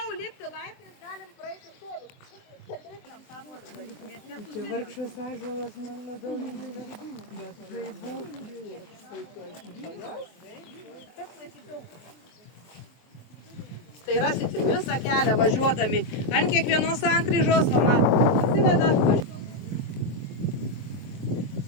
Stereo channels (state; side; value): late; right; 23 ms